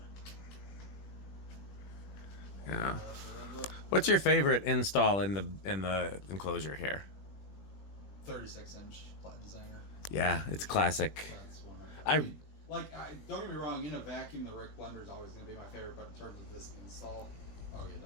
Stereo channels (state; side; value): late; right; 21 ms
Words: Yeah. of. What's your favorite install in the enclosure here? 36-inch Platinum Designer. Yeah, it's classic. That's one. Don't get me wrong. In a vacuum, the Rick blender is always going to be my favorite. But in terms of this install, oh yeah,